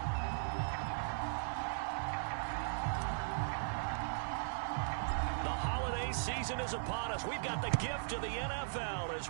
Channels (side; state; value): left; silent; digital silence